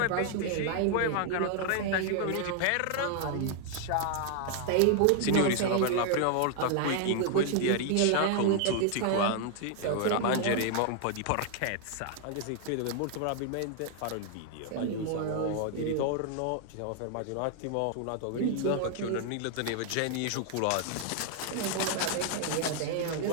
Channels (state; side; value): different; both; correlation 0.00